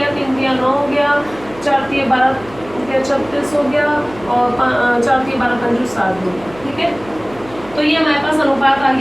3 3 9 हो गया, 4 3 12 36 हो गया और 4 3 12 5 7 हो गया, ठीक है। तो ये हमारे पास अनुपात आ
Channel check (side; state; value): right; noise; hum, 20 dB below the sound